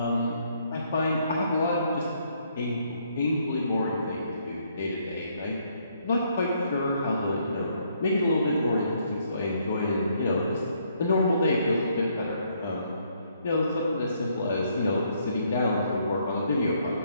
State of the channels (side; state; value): both; inverted; correlation -0.70